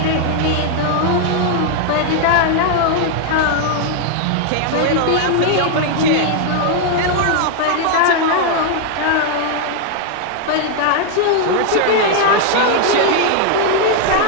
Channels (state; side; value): different; both; correlation 0.00